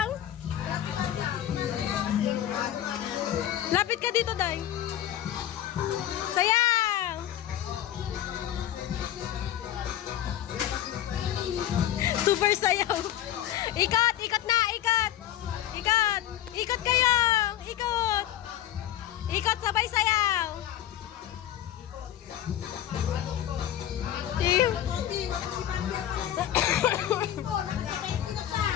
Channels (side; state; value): right; quieter; 12.0 dB